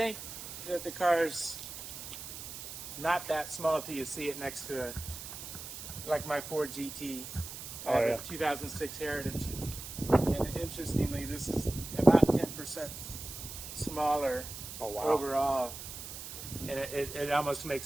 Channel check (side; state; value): right; noise; hiss, 10 dB below the sound